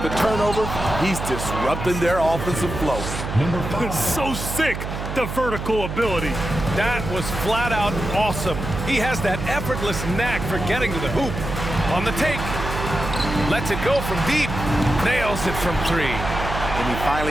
the turnover, he's disrupting their offensive flow. So sick, the vertical ability. That was flat out awesome. He has that effortless knack for getting to the hoop. On the take, lets it go from deep, nails it from 3. And he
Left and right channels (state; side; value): noise; right; hum, 6 dB below the sound